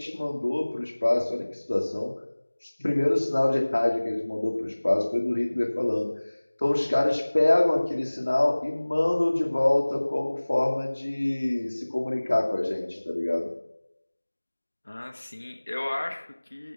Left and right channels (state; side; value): inverted; both; correlation -1.00